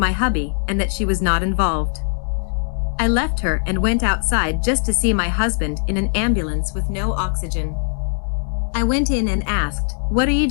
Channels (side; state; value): right; silent; digital silence